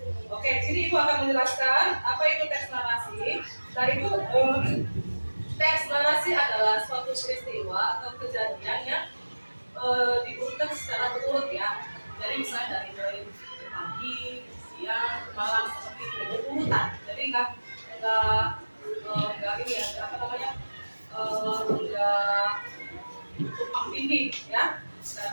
Oke, jadi ibu akan menjelaskan apa itu teks narasi. Dan itu teks narasi adalah suatu peristiwa atau kejadian yang diurutkan secara berurut ya. Jadi misalnya dari pagi, siang, malam seperti itu urutan. Jadi enggak ini ya, apa namanya? Enggak tumpang tindih ya.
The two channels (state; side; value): inverted; both; correlation -1.00